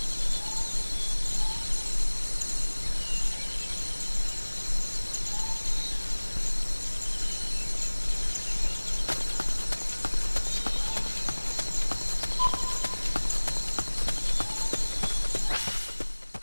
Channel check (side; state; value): both; inverted; correlation -1.00